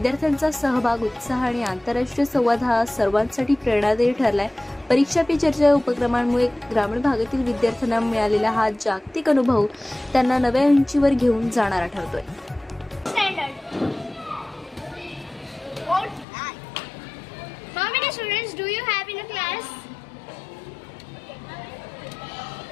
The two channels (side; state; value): right; drops out; at 16.2 s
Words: सहभाग, उत्साह आणि आंतरराष्ट्रीय संवाद हा सर्वांसाठी प्रेरणादायी ठरलाय। परीक्षा पे चर्चा उपक्रमांमुळे ग्रामीण भागातील विद्यार्थ्यांना मिळालेला हा जागतिक अनुभव त्यांना नव्या उंचीवर घेऊन जाणारा ठरतोय। How many students do you have in a class?